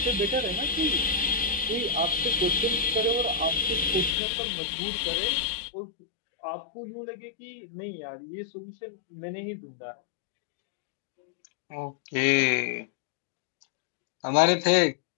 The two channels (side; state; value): right; drops out; at 4.2 s